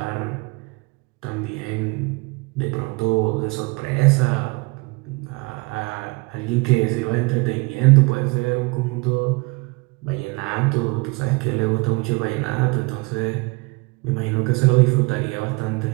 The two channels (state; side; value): quieter; left; 27.3 dB